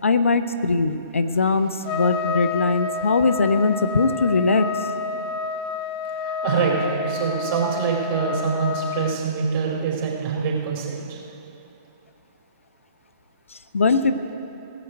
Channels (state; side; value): inverted; both; correlation -0.54